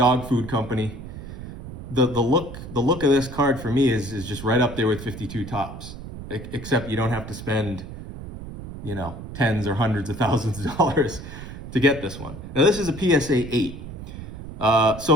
food company. The look of this card for me is just right up there with 52 tops, except you don't have to spend, tens or hundreds of thousands of dollars to get this one. Now this is a PSA 8.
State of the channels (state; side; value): noise; right; rumble, 11 dB below the sound